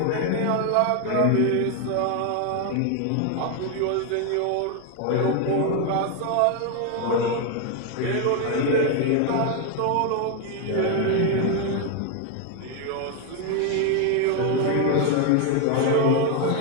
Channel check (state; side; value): different; both; correlation 0.01